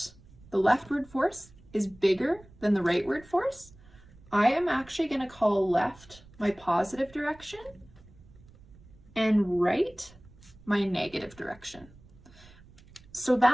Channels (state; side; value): noise; right; rumble, 24 dB below the sound